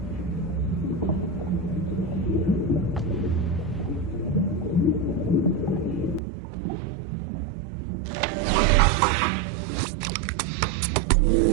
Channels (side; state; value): left; drops out; at 6.2 s